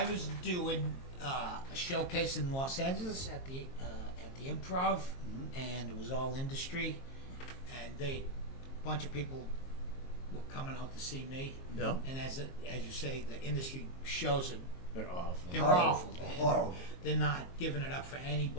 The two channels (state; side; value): late; right; 22 ms